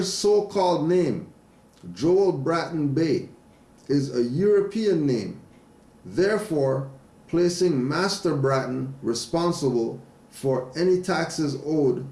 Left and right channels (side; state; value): both; identical; correlation 1.00